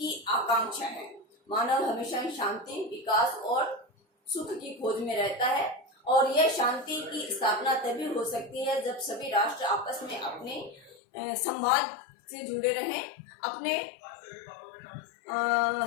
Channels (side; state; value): right; drops out; at 11.0 s